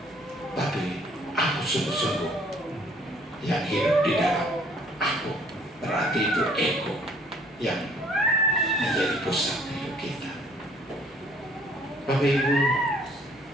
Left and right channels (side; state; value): both; normal; correlation 0.59